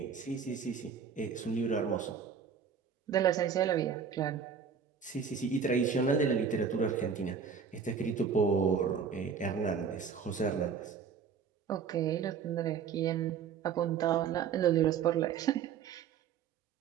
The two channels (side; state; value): left; quieter; 6.6 dB